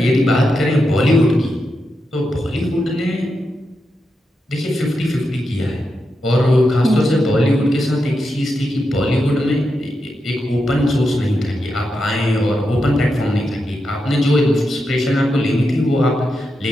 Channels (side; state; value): both; normal; correlation 0.87